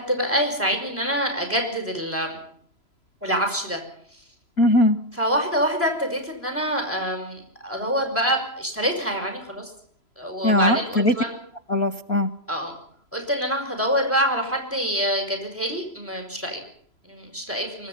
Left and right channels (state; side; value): late; right; 3.0 ms